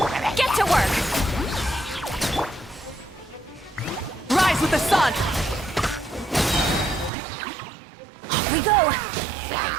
Get to work! Rise with the sun! Off we go!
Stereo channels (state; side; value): drops out; left; at 7.1 s